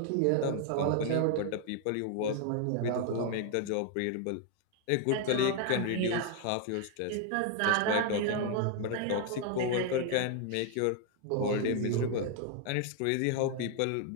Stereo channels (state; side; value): different; both; correlation 0.00